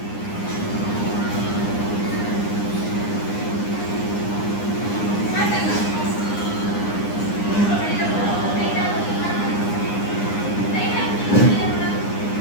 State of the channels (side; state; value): right; late; 9.8 ms